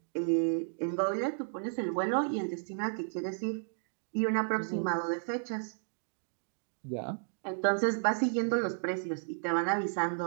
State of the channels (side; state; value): left; silent; digital silence